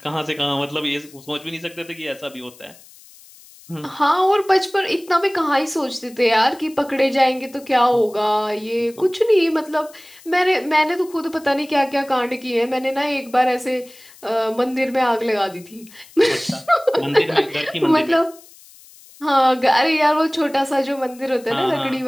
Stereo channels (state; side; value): noise; left; hiss, 23 dB below the sound